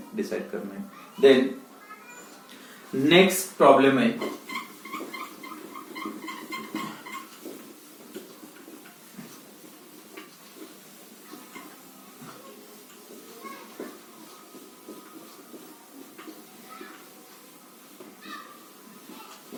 डिसाइड करना है। देन नेक्स्ट प्रॉब्लम है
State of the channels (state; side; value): identical; both; correlation 1.00